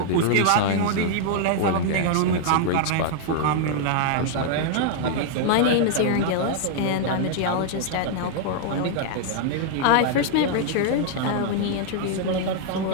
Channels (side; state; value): both; different; correlation -0.01